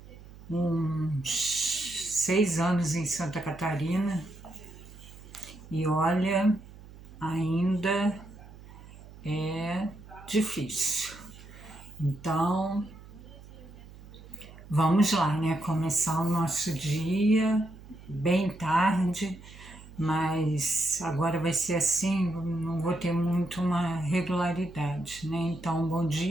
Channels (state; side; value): noise; right; hum, 18 dB below the sound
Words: uns 6 anos em Santa Catarina, e olha, ainda é difícil. Então, vamos lá, né? Começar o nosso dia bem tarde, mas agora vai ser assim, não vou ter muito uma regularidade, né? Então, bom